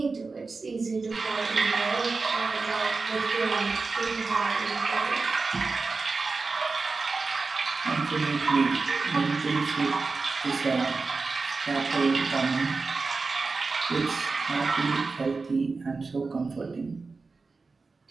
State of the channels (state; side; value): quieter; left; 4.1 dB